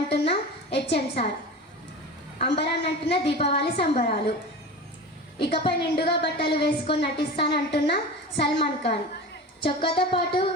హెచ్ఎం సార్, అంబరాన్నంటున్న దీపావళి సంబరాలు, ఇకపై నిండుగా బట్టలు వేసుకొని నటిస్తానంటున్న సల్మాన్ ఖాన్, చొక్కాతో పాటు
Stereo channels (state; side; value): normal; both; correlation 0.32